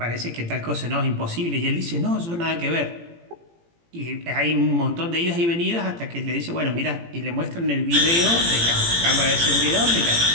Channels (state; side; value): late; left; 18 ms